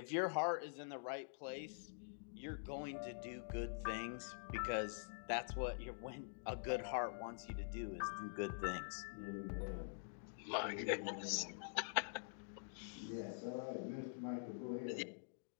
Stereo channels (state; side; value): silent; right; digital silence